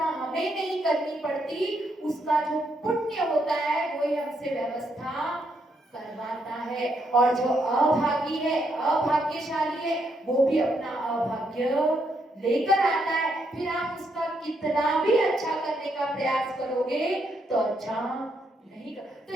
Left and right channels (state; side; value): normal; both; correlation 0.77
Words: हमें नहीं करनी पड़ती, उसका जो पुण्य होता है वही हमसे व्यवस्था करवाता है। और जो अभागी है, अभाग्यशाली है, वो भी अपना अभाग्य लेकर आता है। फिर आप उसका कितना भी अच्छा करने का प्रयास करोगे तो अच्छा नहीं कर। तो